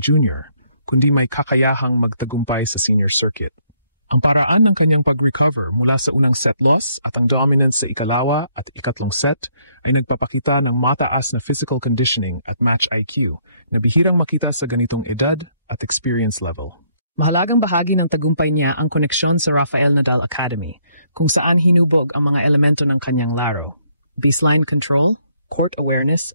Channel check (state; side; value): inverted; both; correlation -0.69